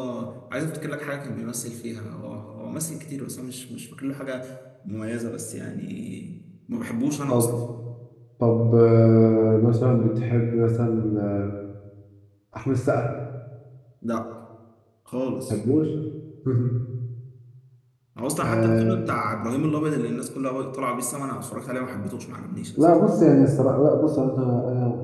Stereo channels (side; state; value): both; identical; correlation 1.00